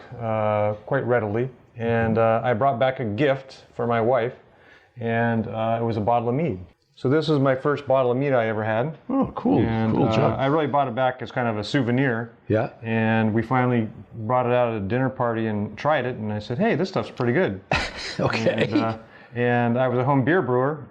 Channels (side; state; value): both; identical; correlation 1.00